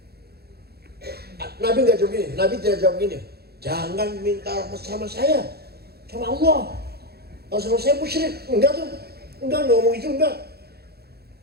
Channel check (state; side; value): late; left; 0.46 ms